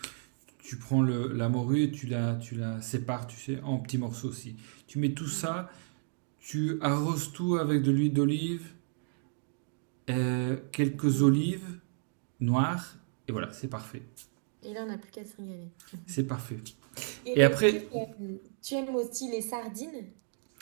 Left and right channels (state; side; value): silent; left; 56 dB below the other